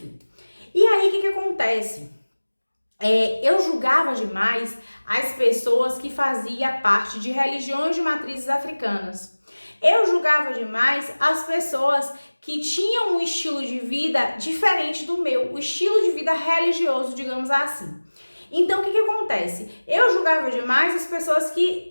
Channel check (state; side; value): inverted; both; correlation -1.00